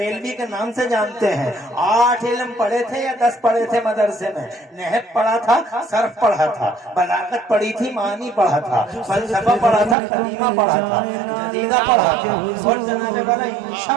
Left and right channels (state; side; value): drops out; left; at 10.0 s